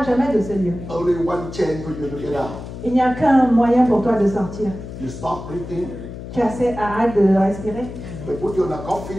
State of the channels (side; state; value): left; noise; hum, 11 dB below the sound